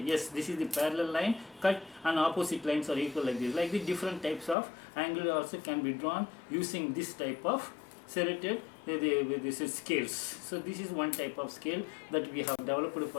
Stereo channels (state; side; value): drops out; right; at 4.5 s